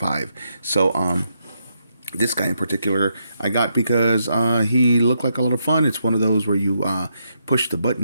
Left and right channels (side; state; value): both; inverted; correlation -0.80